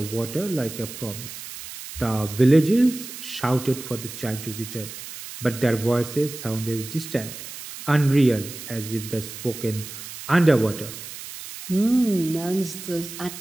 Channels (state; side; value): noise; right; hiss, 11 dB below the sound